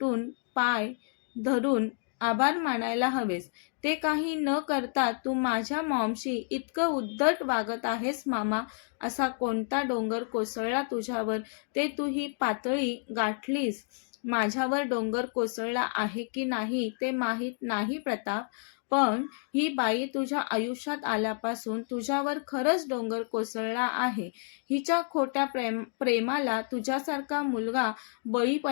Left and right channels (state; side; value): silent; right; 56 dB below the other